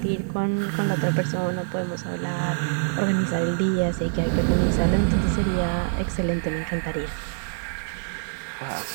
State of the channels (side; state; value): left; silent; 62 dB below the other